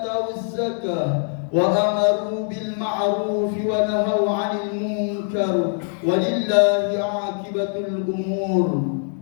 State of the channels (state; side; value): silent; right; 58 dB below the other